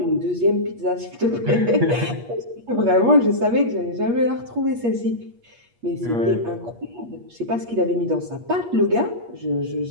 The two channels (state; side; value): late; left; 8.4 ms